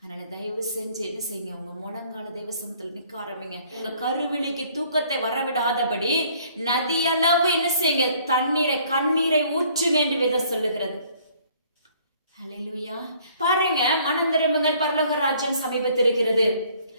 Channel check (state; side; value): inverted; both; correlation -0.59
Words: தயவு செஞ்சு என்ன செய்யுங்க, உங்க முழங்கால தேவ சமூகத்துல நிற்க ஆரம்பிங்க. உங்க கருவிழிக்கு தூக்கத்தை வரவிடாதபடி நதியளவு என்ன செய்யுங்க, கண்ணீரை ஊற்றுங்க என்று வேதம் சொல்லுகிறது. ஹல்லேலூயா. பாருங்க, மனம் திரும்புங்கள், பரலோக ராஜ்யம் சமீபத்திருக்கிறது.